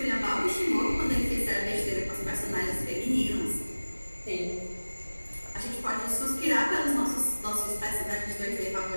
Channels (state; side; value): inverted; both; correlation -1.00